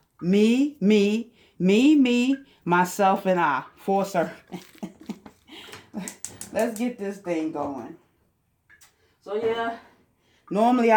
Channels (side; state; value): both; identical; correlation 1.00